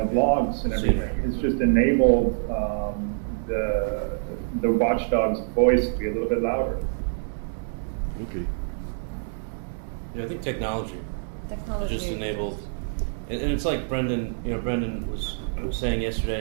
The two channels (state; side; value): silent; left; digital silence